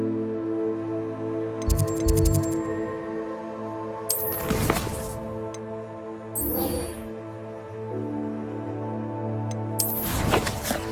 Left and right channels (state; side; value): identical; both; correlation 1.00